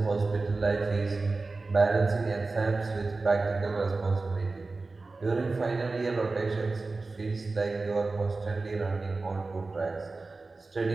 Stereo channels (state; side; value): quieter; left; 3.6 dB